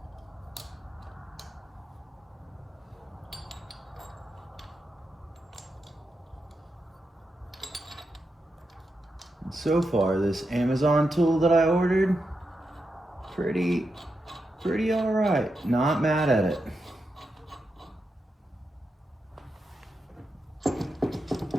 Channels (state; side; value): normal; both; correlation 0.86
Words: And so far, this Amazon tool that I ordered, pretty all right. Not mad at it.